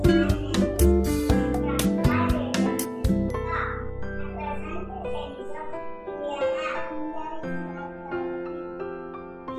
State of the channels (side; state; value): both; identical; correlation 1.00